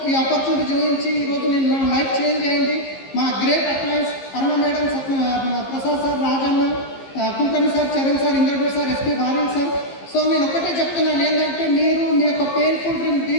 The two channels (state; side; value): late; right; 15 ms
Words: ఈ ఆపర్చునిటీ చూపించి ఈరోజు నేను నా లైఫ్ చేంజ్ అయింది. మా great appliance Aruna madam, Prasad sir, Rajanna, Kulkarni sir, Charan sir, Indragud sir, SP Bharat sir. So నేను ఒకటే చెప్తున్నాను ఏంటంటే, మీరు మీ యొక్క పెయిన్ఫుల్ డ్రీమ్